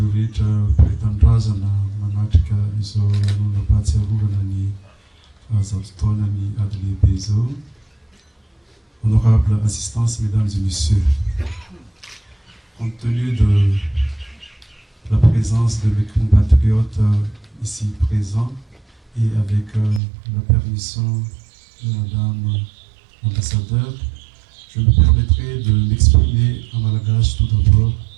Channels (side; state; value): left; drops out; at 20.0 s